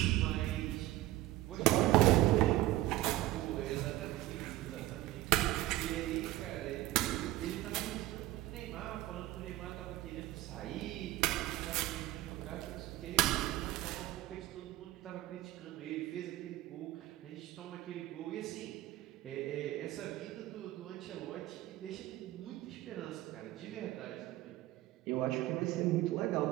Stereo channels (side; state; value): left; quieter; 16.2 dB